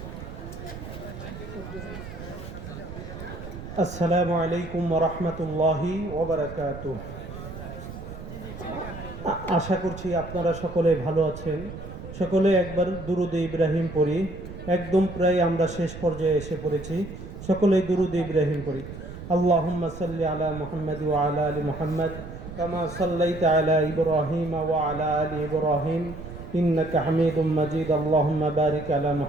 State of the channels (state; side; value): noise; right; rumble, 11 dB below the sound